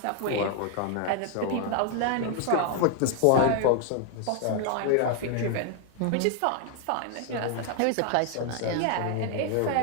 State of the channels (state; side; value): different; both; correlation 0.00